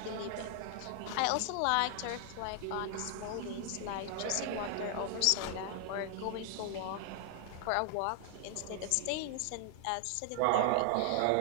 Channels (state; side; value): different; both; correlation 0.00